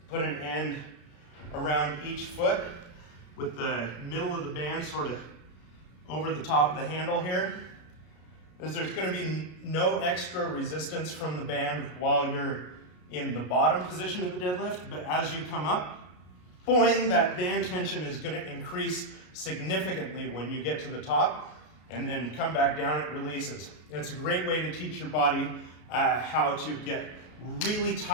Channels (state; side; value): late; right; 33 ms